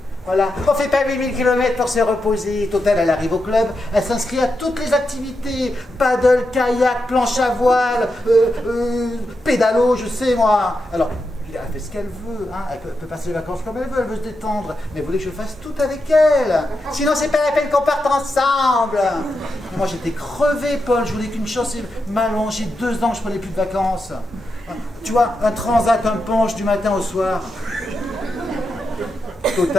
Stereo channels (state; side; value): normal; both; correlation 0.87